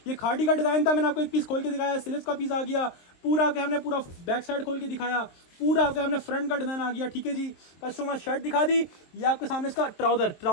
ये खाड़ी का डिज़ाइन था, मैंने आपको एक पीस खोल के दिखाया, स्लीव्स का पीस आ गया पूरा, के हमने पूरा बैक साइड खोल के दिखाया, पूरा के हमने फ्रंट का डिज़ाइन आ गया। ठीक है जी, कस्टमर शर्ट दिखा दी, ये आपके सामने इसका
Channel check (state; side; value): late; right; 23 ms